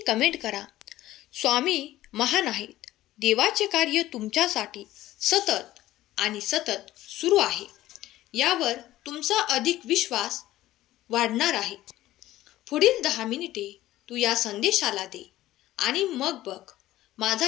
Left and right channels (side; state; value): right; quieter; 15.2 dB